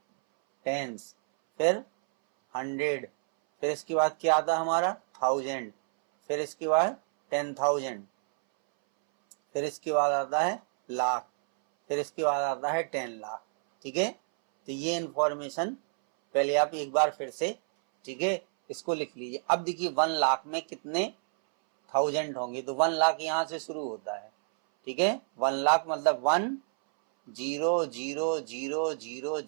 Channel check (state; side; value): silent; left; 59 dB below the other